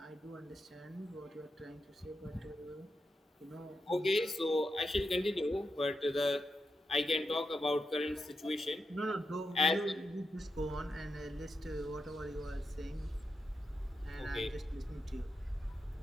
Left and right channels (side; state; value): both; normal; correlation 0.87